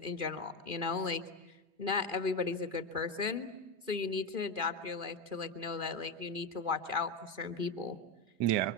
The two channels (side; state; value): left; late; 2.4 ms